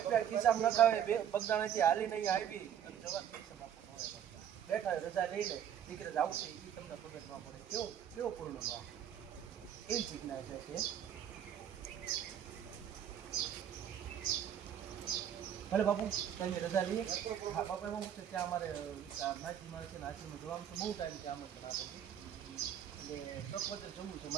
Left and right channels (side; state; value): left; quieter; 9.5 dB